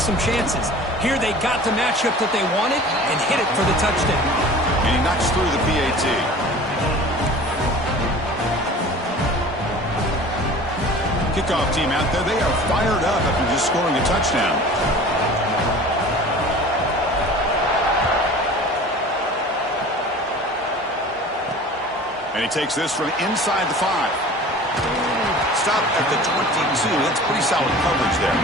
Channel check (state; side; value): normal; both; correlation 0.42